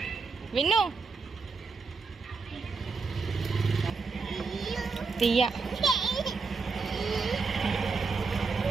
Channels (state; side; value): quieter; left; 4.5 dB